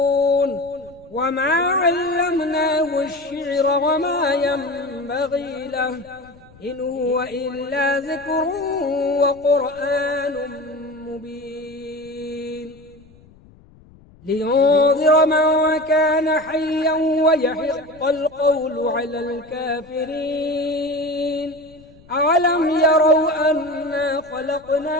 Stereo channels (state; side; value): noise; left; rumble, 26 dB below the sound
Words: وما علمناه الشعر وما ينبغي له إن هو إلا ذكر وقرآن مبين لينذر من كان حيا ويحق القول على الكافرين أولم يروا أنا